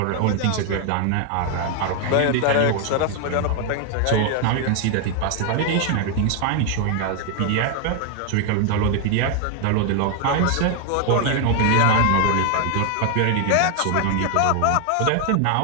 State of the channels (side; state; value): both; different; correlation 0.01